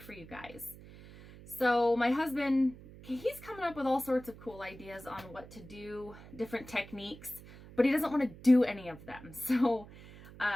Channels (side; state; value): right; noise; hum, 18 dB below the sound